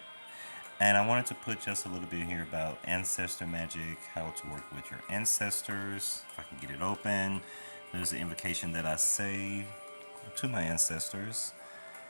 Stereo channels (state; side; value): inverted; both; correlation -1.00